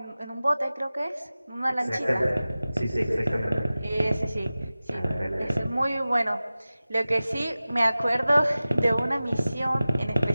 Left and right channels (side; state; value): both; inverted; correlation -0.97